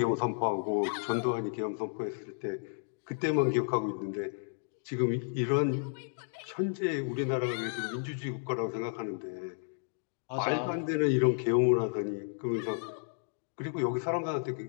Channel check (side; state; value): right; silent; digital silence